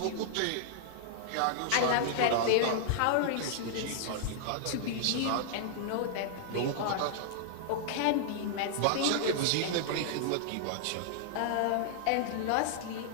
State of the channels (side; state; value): both; different; correlation -0.01